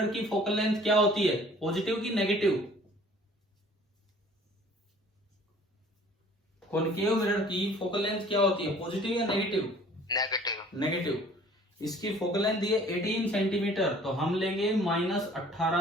की फोकल लेंथ क्या होती है, पॉजिटिव की नेगेटिव? कॉनकेव मिरर की फोकल लेंथ क्या होती है, पॉजिटिव या नेगेटिव? नेगेटिव। इसकी फोकल लेंथ दी है 18 सेंटीमीटर, तो हम लेंगे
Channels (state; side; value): normal; both; correlation 0.52